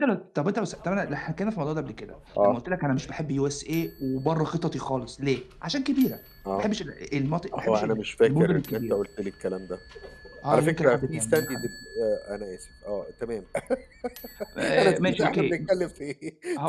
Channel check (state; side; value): identical; both; correlation 1.00